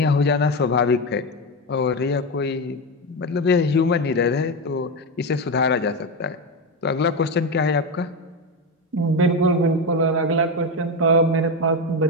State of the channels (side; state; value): both; normal; correlation 0.14